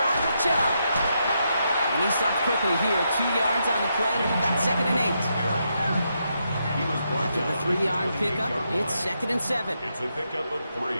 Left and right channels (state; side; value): inverted; both; correlation -0.81